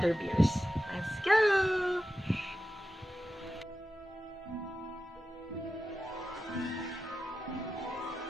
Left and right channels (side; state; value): both; normal; correlation 0.92